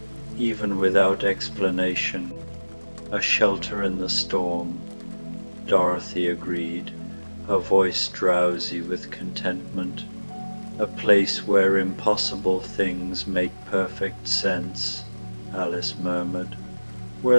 even without explanation. A shelter in the storm," Dorothy agreed, her voice drowsy with contentment. "A place where impossible things make perfect sense," Alice murmured.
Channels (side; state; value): both; inverted; correlation -1.00